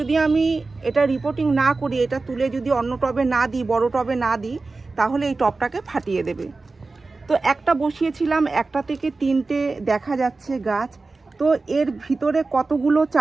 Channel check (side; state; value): left; quieter; 3.7 dB